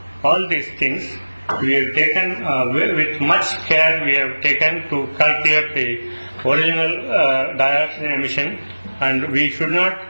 All these things we have taken with much care. We have taken to calculate the original dioxin emission, and we should not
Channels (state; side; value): inverted; both; correlation -1.00